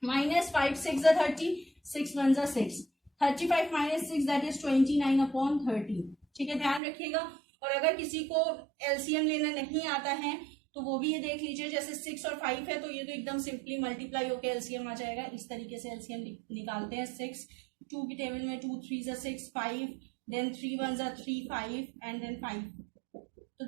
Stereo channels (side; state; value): left; drops out; at 6.8 s